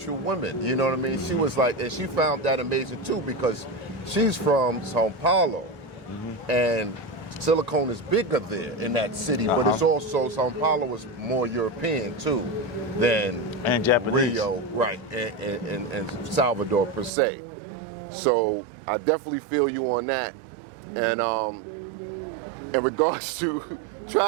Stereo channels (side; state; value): left; drops out; at 17.1 s